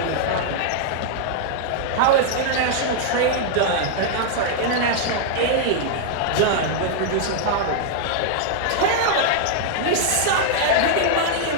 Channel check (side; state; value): both; different; correlation -0.01